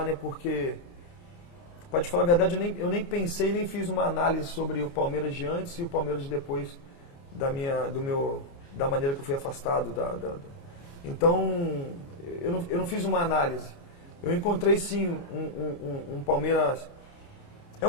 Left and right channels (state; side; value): late; right; 29 ms